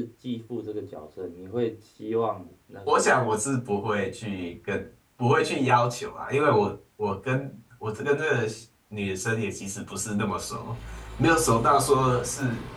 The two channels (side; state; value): both; identical; correlation 1.00